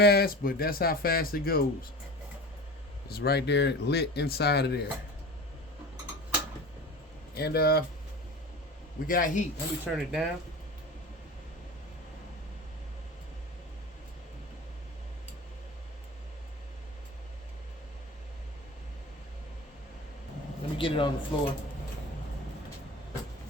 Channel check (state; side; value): normal; both; correlation 0.33